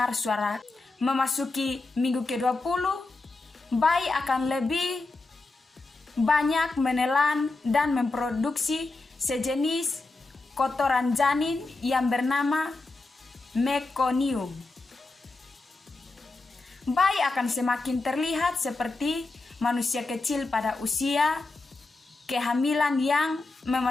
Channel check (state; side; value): quieter; right; 3.4 dB